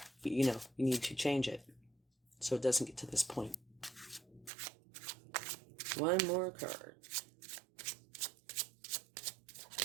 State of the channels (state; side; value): drops out; left; at 4.5 s